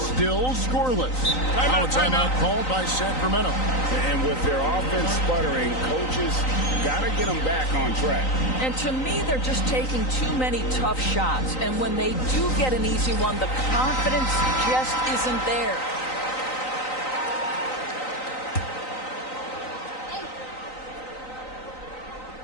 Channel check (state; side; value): late; right; 3.9 ms